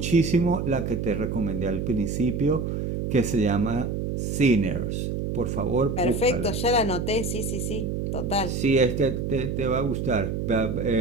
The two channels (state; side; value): noise; right; hum, 2 dB below the sound